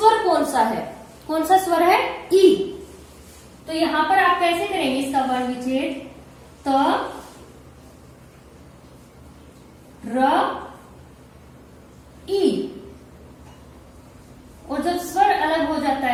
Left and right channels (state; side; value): identical; both; correlation 1.00